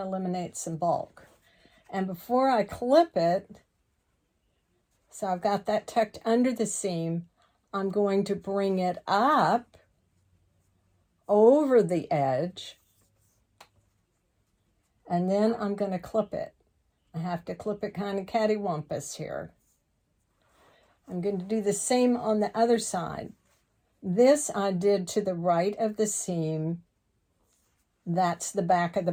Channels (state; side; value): identical; both; correlation 1.00